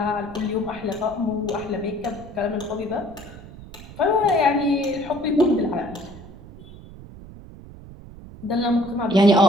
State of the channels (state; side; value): noise; right; rumble, 17 dB below the sound